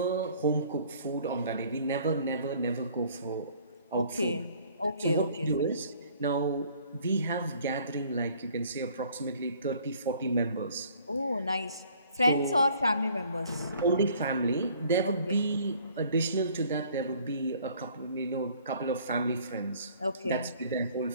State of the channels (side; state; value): both; inverted; correlation -0.57